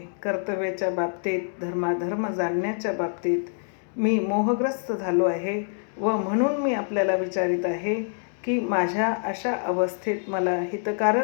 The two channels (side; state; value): right; silent; digital silence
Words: कर्तव्याच्या बाबतीत, धर्माधर्म जाणण्याच्या बाबतीत मी मोहग्रस्त झालो आहे व म्हणून मी आपल्याला विचारित आहे की माझ्या अशा अवस्थेत मला